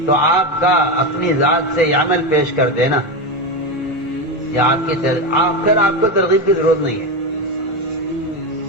تو آپ کا اپنی ذات سے یہ عمل پیش کر دینا یا آپ کو ترغیب کی ضرورت نہیں ہے.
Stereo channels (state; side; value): normal; both; correlation 0.15